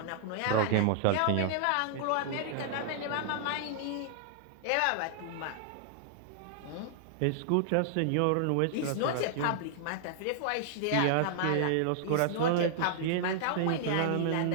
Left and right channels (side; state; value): both; different; correlation -0.01